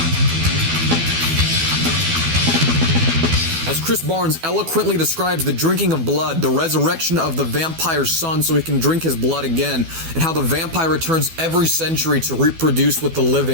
As Chris Barnes eloquently describes the drinking of blood, the resurrection of the vampire's son so he can drink his blood again, and how the vampire returns every century to reproduce with the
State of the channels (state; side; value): late; left; 12 ms